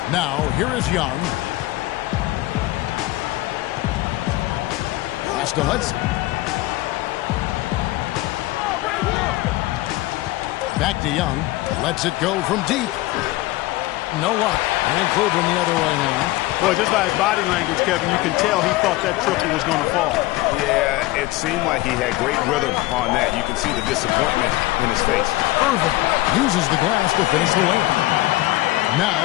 Now, here is Young. Pass to Hudson. Back to Young. Lets it go from deep. No luck. And Cleveland the other way now. Boy, just by his body language, Kevin, you can tell he thought that triple was going to fall. Yeah, it seemed like he had great rhythm on that. You can see the disappointment in his face. Irving uses the glass to finish the layup.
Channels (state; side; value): quieter; right; 18.7 dB